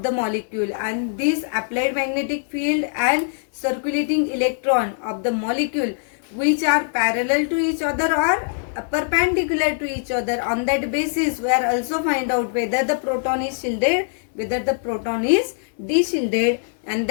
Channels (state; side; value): silent; right; 64 dB below the other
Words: the molecule, and this applied magnetic field and circulating electron of the molecule which are parallel to each other or perpendicular to each other. On that basis we are also find out whether the proton is shielded, whether the proton is de-shielded, and